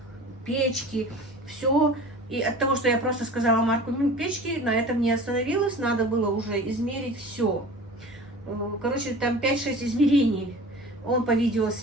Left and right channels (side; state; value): both; normal; correlation 0.39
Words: печки, все. И от того, что я просто сказала марку печки, на этом не остановилась, надо было уже измерить все. Короче, там 5-6 измерений. Он по